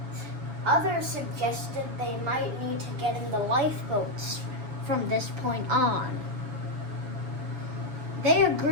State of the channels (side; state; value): left; late; 6.6 ms